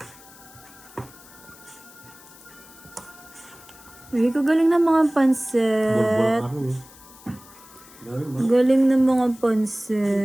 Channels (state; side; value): noise; left; hiss, 22 dB below the sound